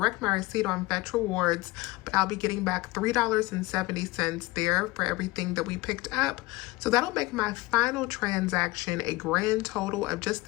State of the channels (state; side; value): quieter; right; 21.0 dB